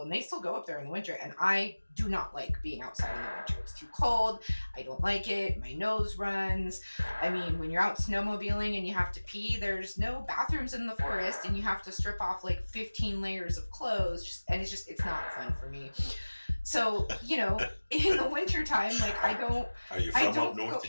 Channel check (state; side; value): inverted; both; correlation -1.00